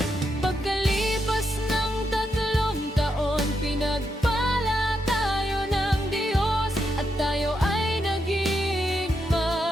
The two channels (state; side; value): normal; both; correlation 0.82